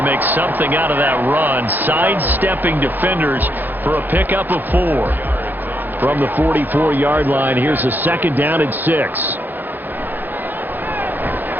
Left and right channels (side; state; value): left; late; 0.087 ms